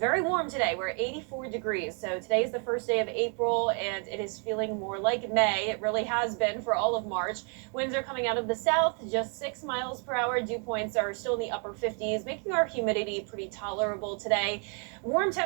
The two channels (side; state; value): left; quieter; 38.6 dB